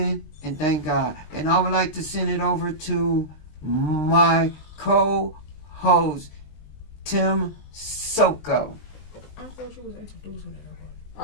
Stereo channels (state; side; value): late; right; 20 ms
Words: and thank God. And I would like to send it over to my co-host, Tim Soko. I thought you was introducing